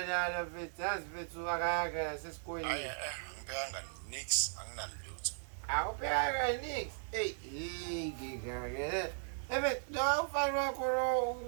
mfethu yazi mfethu akayanga nasesikoleni. Ngibhekanga nix anginalutho. Awupheka nix ngikake no ufana wakho lo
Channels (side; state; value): left; silent; 53 dB below the other